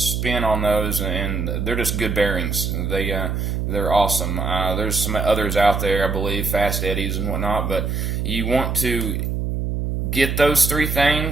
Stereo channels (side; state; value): right; noise; hum, 1 dB below the sound